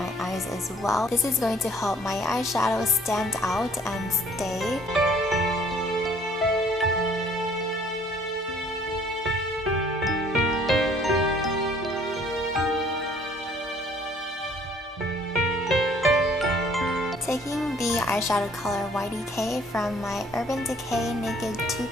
eyes as well. This is going to help my eyeshadow stand out and stay. Taking the eyeshadow color YDK from my Urban Decay Naked 2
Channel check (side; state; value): both; normal; correlation 0.58